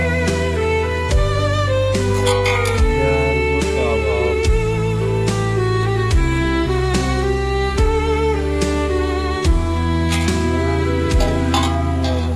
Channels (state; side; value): identical; both; correlation 1.00